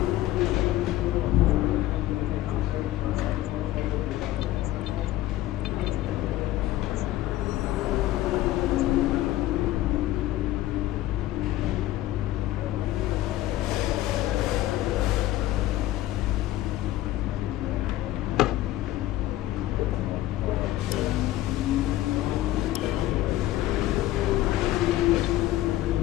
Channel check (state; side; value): quieter; right; 14.9 dB